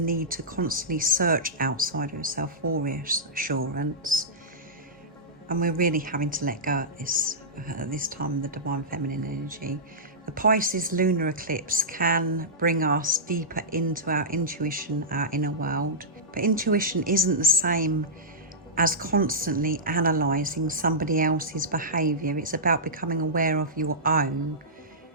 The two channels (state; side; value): normal; both; correlation -0.15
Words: to constantly search outside of yourself for reassurance. And we're really having to let go at this time, the divine feminine energy. The Pisces lunar eclipse can bring us deeper into our intuition, our inner world. But intuition isn't the same as constantly analysing somebody else's behaviour. It's about becoming aware of your own,